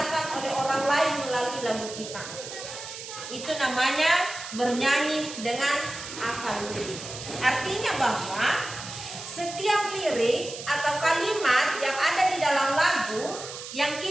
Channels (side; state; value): right; noise; hiss, 10 dB below the sound